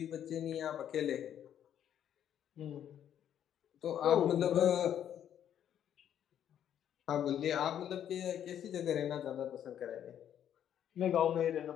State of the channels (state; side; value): quieter; right; 10.0 dB